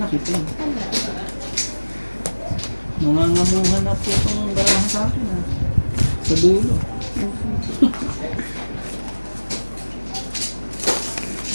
kita. Nangangamuhan na po itong barahan sa akin ah. Sa dulo.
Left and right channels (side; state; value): both; inverted; correlation -1.00